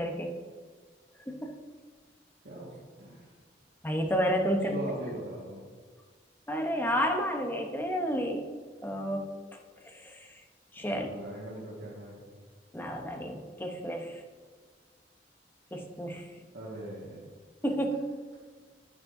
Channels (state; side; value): normal; both; correlation 0.58